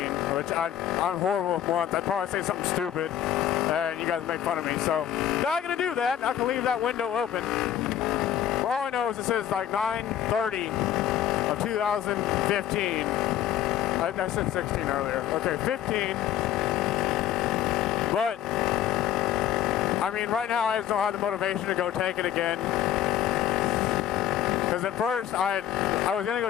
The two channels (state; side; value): quieter; right; 10.9 dB